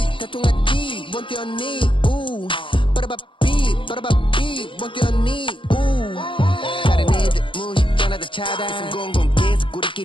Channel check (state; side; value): late; right; 0.25 ms